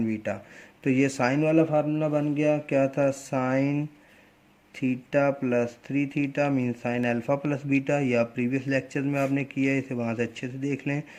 beta. तो ये साइन वाला फार्मूला बन गया, क्या था, sine theta plus 3 theta mean sine alpha plus beta. या प्रीवियस लेक्चर में आपने किया है, इसे वहाँ से अच्छे से देख लें।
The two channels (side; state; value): both; identical; correlation 1.00